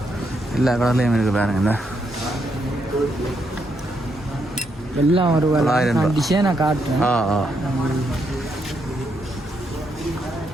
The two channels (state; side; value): normal; both; correlation 0.78